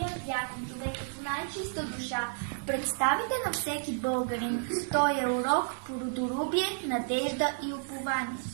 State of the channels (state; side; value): silent; left; 57 dB below the other